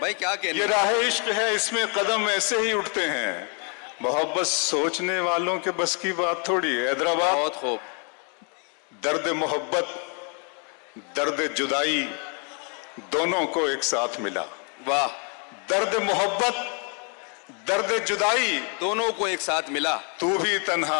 भाई, क्या कहने। ये राह इश्क है, इसमें कदम ऐसे ही उठते हैं। मोहब्बत सोचने वालों के बस की बात थोड़ी है। हैदराबाद, बहुत खूब। दर्द मोहब्बत, दर्द जुदाई दोनों को एक साथ मिला। वाह। दर्द मोहब्बत, दर्द जुदाई दोनों को एक साथ मिला। तू भी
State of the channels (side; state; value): right; quieter; 38.4 dB